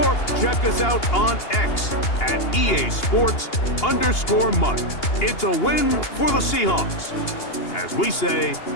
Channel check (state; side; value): late; right; 2.8 ms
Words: check us out on X at EA Sports_MUT. It's a win for the Seahawks. As we say,